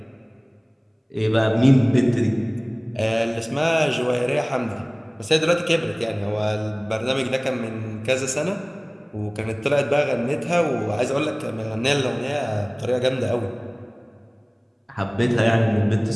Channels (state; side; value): identical; both; correlation 1.00